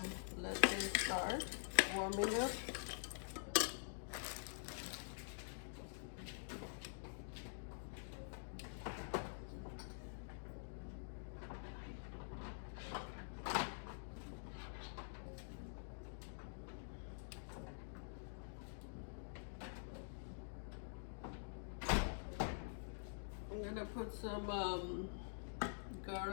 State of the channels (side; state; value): right; silent; digital silence